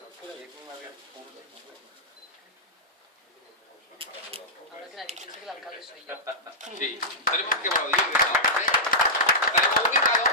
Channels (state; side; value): normal; both; correlation -0.13